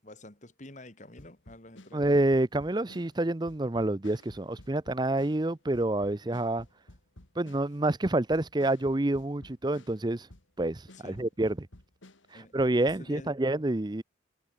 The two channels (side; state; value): both; normal; correlation 0.71